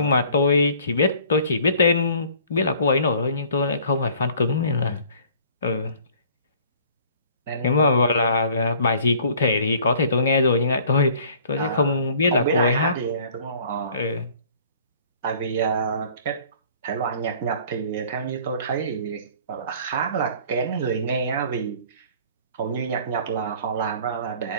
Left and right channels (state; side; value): inverted; both; correlation -0.53